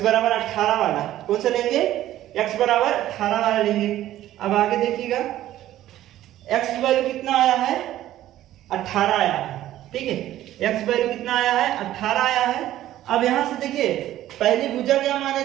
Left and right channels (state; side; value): quieter; left; 13.6 dB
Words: बराबर 18 वाला, कौन सा लेंगे x बराबर 18 वाला लेंगे। अब आगे देखिएगा x वैल्यू कितना आया है 18 आया है, ठीक है, x वैल्यू कितना आया है 18 आया है। अब यहां से देखिए पहली भुजा क्या माने